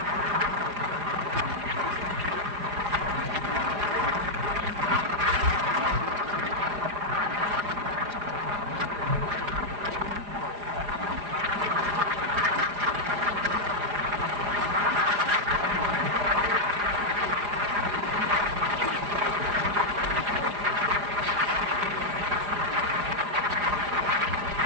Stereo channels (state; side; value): late; left; 4.9 ms